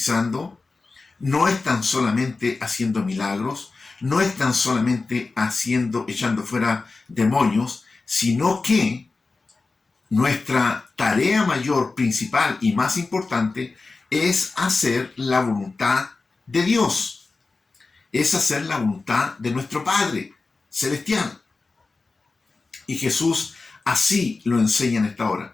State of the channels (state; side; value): quieter; right; 3.8 dB